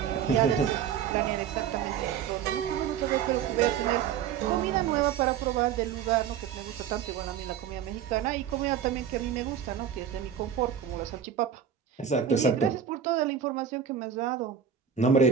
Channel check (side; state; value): left; quieter; 8.3 dB